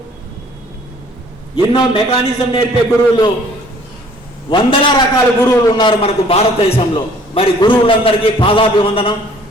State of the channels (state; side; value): normal; both; correlation 0.56